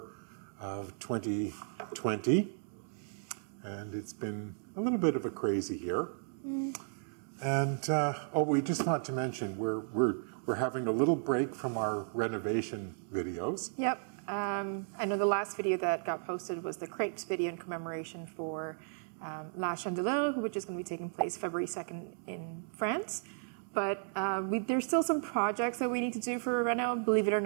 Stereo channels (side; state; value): left; silent; digital silence